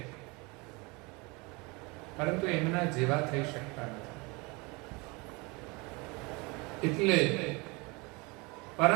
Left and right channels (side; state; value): left; quieter; 26.9 dB